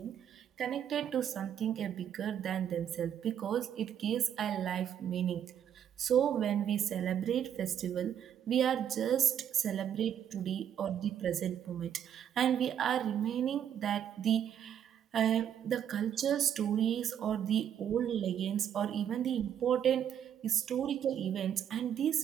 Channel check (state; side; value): quieter; left; 9.3 dB